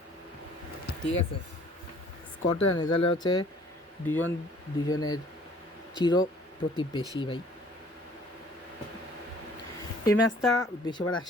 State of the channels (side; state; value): both; normal; correlation 0.55